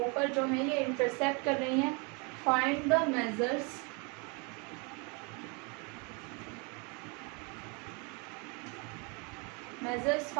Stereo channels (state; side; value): quieter; left; 32.4 dB